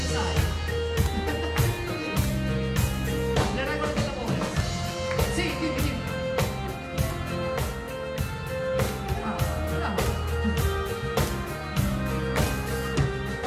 sai? Le regole dell'amore? Sì, dimmi.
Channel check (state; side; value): identical; both; correlation 1.00